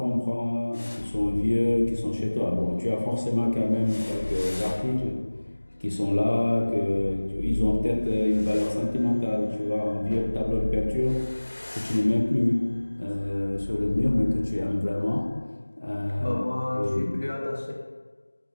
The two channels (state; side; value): inverted; both; correlation -1.00